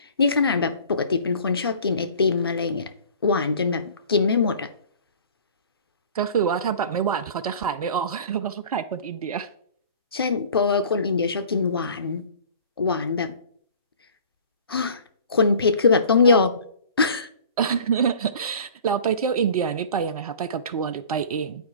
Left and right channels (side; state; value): both; inverted; correlation -0.45